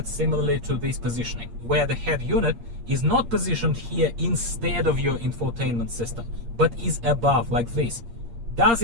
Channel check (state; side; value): late; left; 8.6 ms